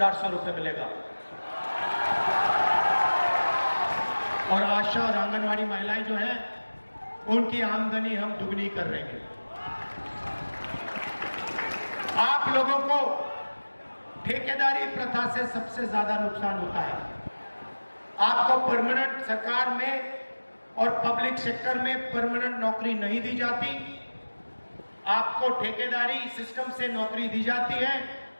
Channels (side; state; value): both; inverted; correlation -1.00